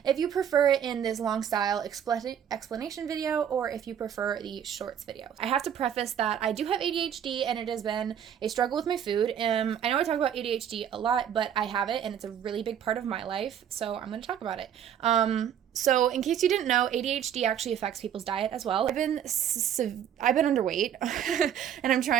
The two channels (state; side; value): quieter; left; 9.2 dB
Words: if you prefer it in this long style explanation video, or if you prefer the shorts video. I have to preface that I do have ADHD and it has been a struggle with my food. I know I talk about ADHD a lot, but I have it and it's a really big part of my life, so I'm going to talk about it. So in case you didn't know, ADHD actually affects people's diet as well. I've been underweight and I'm